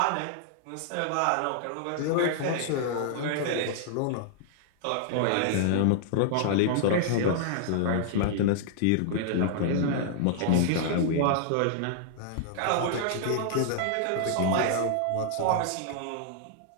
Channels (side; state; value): both; different; correlation -0.01